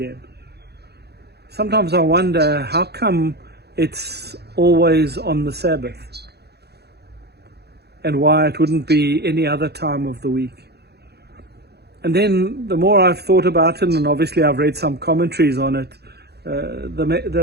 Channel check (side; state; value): left; late; 0.48 ms